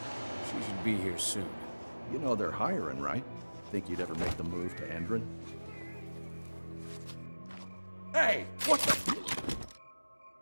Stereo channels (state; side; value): inverted; both; correlation -1.00